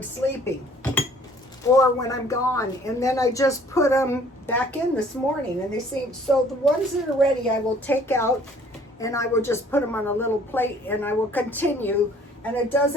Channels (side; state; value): both; normal; correlation 0.56